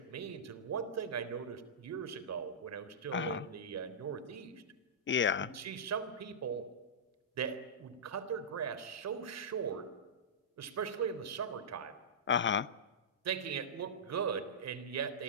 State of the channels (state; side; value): normal; both; correlation -0.17